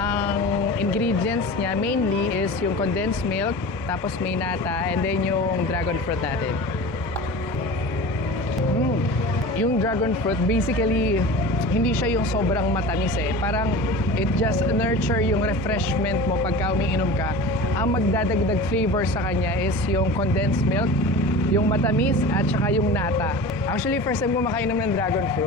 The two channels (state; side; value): normal; both; correlation 0.34